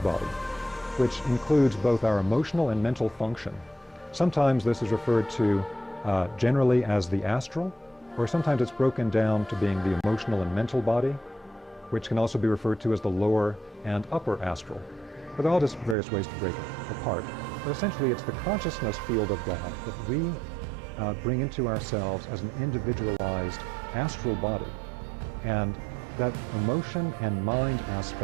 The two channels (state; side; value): drops out; left; at 16.0 s